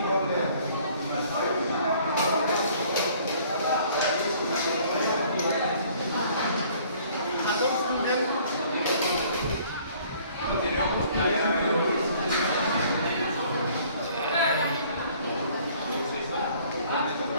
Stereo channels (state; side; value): inverted; both; correlation -0.57